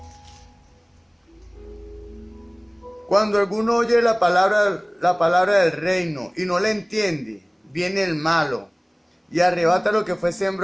Cuando alguno oye la palabra del reino y no la entiende, viene el malo y arrebata lo que fue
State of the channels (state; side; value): identical; both; correlation 1.00